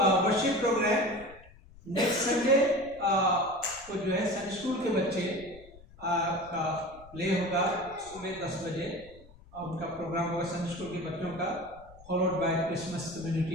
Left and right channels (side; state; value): left; noise; rumble, 22 dB below the sound